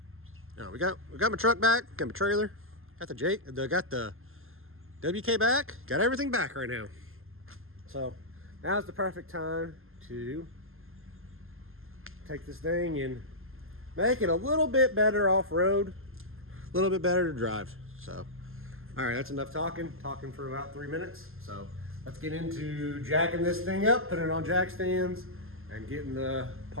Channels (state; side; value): late; left; 0.61 ms